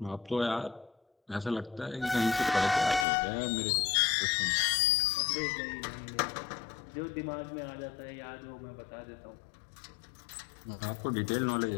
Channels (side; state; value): right; drops out; at 3.1 s